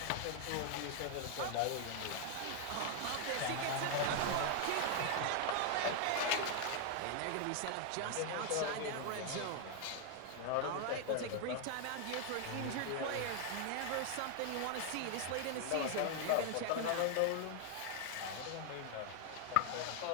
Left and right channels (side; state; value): both; different; correlation 0.00